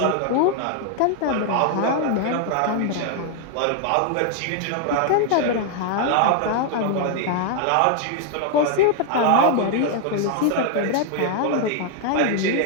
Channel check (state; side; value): different; both; correlation 0.00